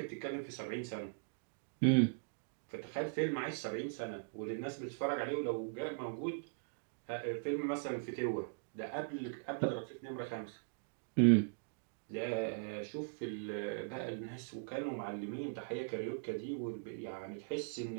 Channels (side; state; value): left; silent; digital silence